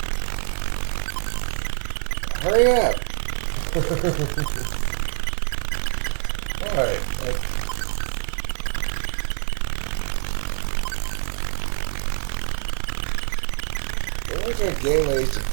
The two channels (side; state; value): left; silent; digital silence